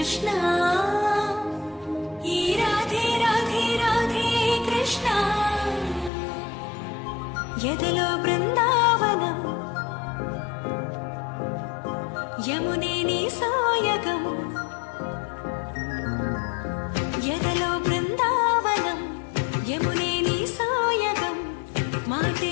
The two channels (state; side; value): drops out; right; at 6.1 s